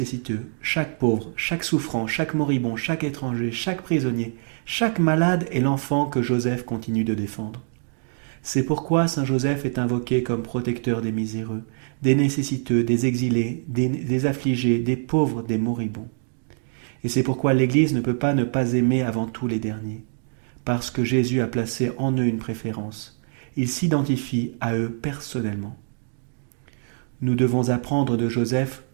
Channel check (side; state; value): left; silent; 62 dB below the other